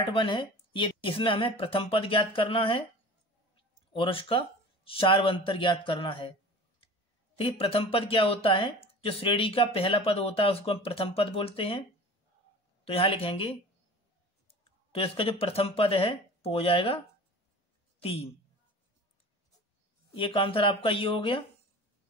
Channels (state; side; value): normal; both; correlation 0.39